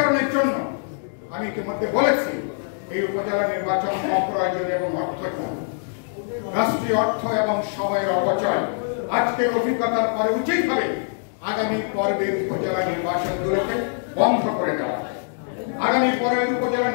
জন্য আমি ইতিমধ্যে বলেছি এই উপজেলা নির্বাচন অপ্রয়োজনীয় এবং অর্থহীন, রাষ্ট্রীয় অর্থ এবং সময়ের অপচয়। আজকের অভিজ্ঞতার পরে উচিত হবে আগামী পর্বের উপজেলা নির্বাচনগুলোকে বন্ধ করে দেওয়া, আগামী পর্বের উপজেলা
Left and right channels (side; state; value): right; silent; digital silence